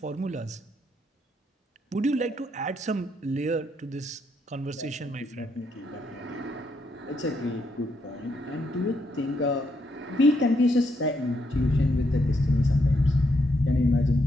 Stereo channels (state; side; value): normal; both; correlation 0.77